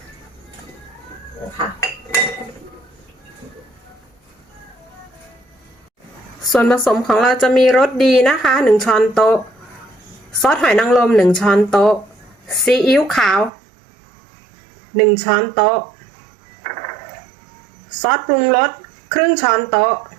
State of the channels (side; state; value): left; drops out; at 13.5 s